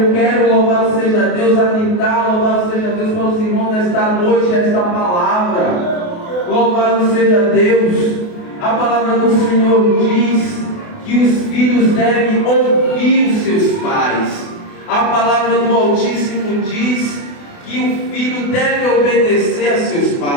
quero, louvado seja Deus, atentar, louvado seja Deus para os irmãos desta noite, esta palavra. Louvado seja Deus. A palavra do Senhor diz que os filhos devem ouvir os seus pais. A palavra do Altíssimo diz que o filho deve obedecer a seus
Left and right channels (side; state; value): right; late; 28 ms